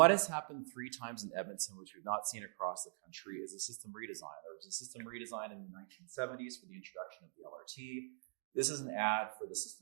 has happened 3 times in Edmonton, which we've not seen across the country, is a system redesign. There was a system redesign in the 1970s for the introduction of the LRT. This is an ad for the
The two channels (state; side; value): silent; left; digital silence